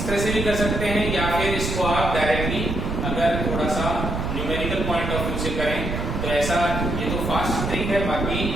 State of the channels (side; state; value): right; noise; rumble, 3 dB below the sound